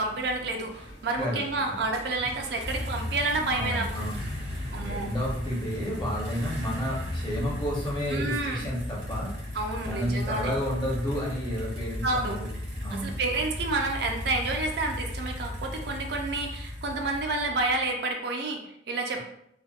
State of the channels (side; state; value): both; normal; correlation 0.35